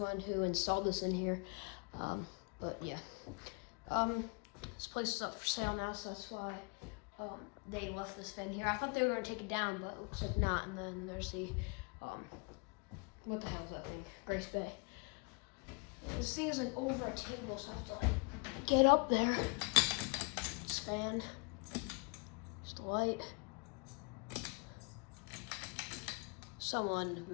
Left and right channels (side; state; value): right; quieter; 34.5 dB